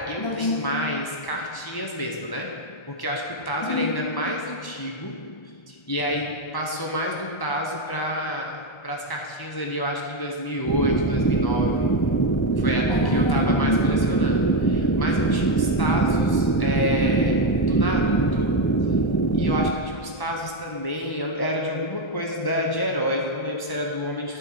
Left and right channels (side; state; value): right; late; 1.1 ms